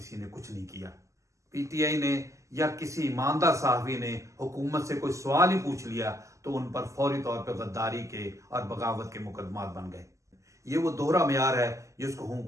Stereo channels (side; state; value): left; late; 0.15 ms